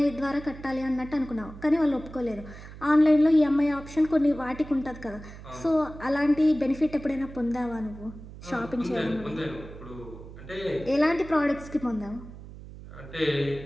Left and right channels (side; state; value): right; noise; hum, 15 dB below the sound